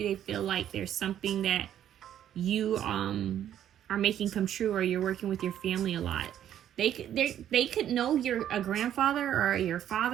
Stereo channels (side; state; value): left; quieter; 10.7 dB